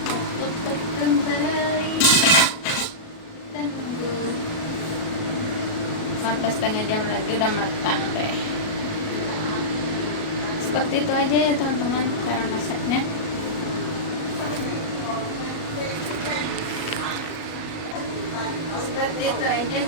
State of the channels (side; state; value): right; late; 37 ms